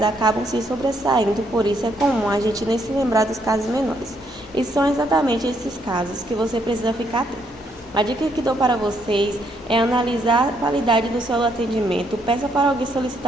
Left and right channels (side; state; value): both; normal; correlation 0.73